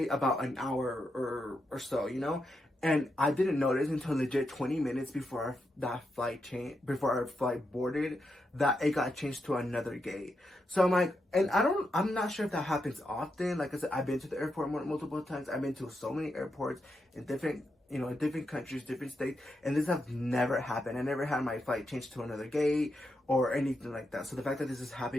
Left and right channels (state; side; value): normal; both; correlation 0.84